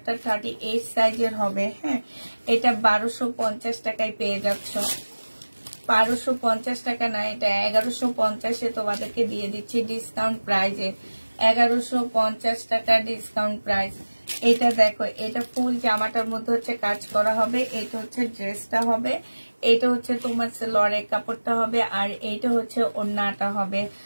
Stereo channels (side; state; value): both; inverted; correlation -1.00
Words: 38 সাইজের হবে। হ্যাঁ, এটা 1250 টাকায় পেয়ে যাচ্ছ। 1250 টাকা না, এটা 1150-এ তোমাদেরকে দিয়ে দিচ্ছি ডিসকাউন্ট প্রাইজে। 1150 টাকা ডিসকাউন্ট প্রাইস। এটা দেখো, এটা ফুল জামাটার মধ্যে হচ্ছে কাজ করা হবে। এটা হচ্ছে ড্রেসটা হবে। এটা হচ্ছে তোমার সালোয়ারের কাপড়টা হবে, আর এইটা হচ্ছে ওড়নাটা হবে।